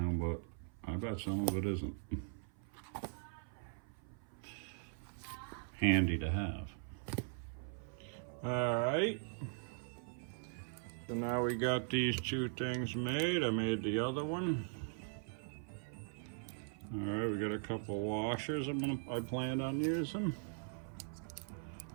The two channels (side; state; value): left; silent; 51 dB below the other